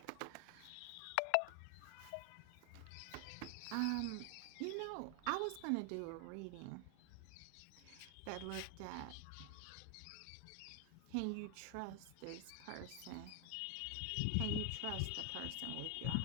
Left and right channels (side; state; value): both; different; correlation 0.00